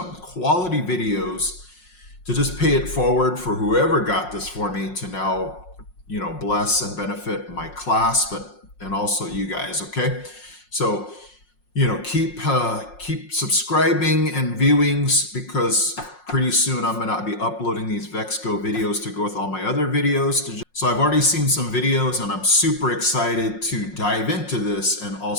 quality videos to just pay it forward for whoever got this for me to now bless and benefit my class, and also you guys. Okay, so keep subscribing and viewings, because pretty soon I'm gonna be uploading these Vex Go videos to go with all my other videos. So I've already seen some videos and I'm super excited to dive into this and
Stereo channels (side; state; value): right; late; 5.5 ms